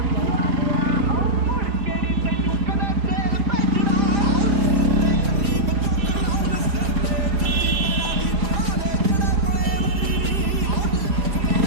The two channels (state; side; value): late; left; 5.0 ms